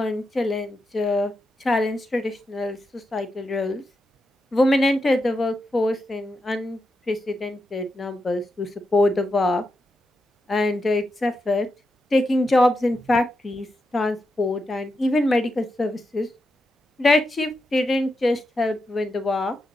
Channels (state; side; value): normal; both; correlation 0.86